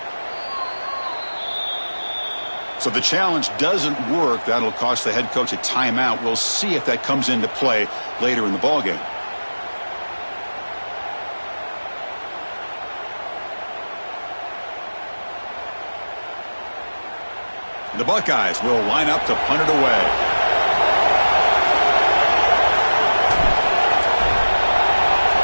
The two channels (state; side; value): inverted; both; correlation -1.00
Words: So the challenge doesn't work. That'll cost the head coach a timeout. We'll see if that comes into play later in the ballgame. The Buckeyes will line up to punt it away.